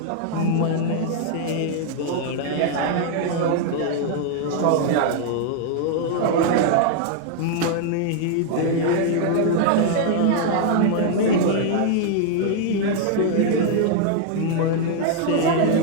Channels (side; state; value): both; different; correlation 0.00